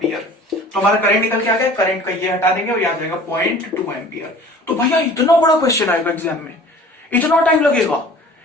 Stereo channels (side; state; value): both; normal; correlation 0.46